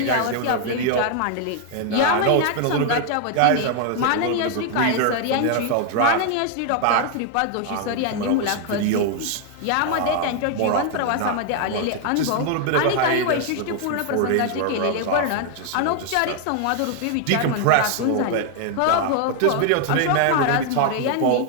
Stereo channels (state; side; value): different; both; correlation 0.00